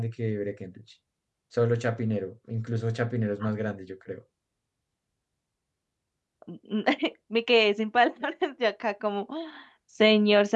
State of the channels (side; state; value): both; identical; correlation 1.00